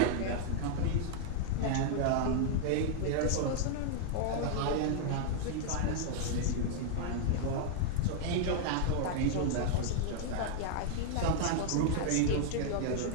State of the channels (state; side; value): different; both; correlation -0.01